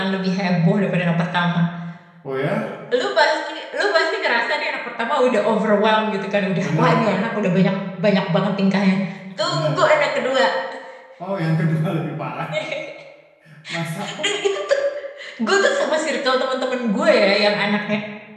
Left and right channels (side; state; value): both; identical; correlation 1.00